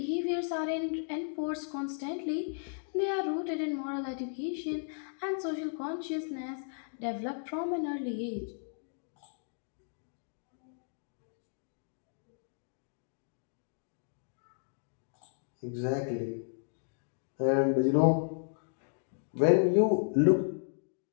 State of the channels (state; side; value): silent; right; digital silence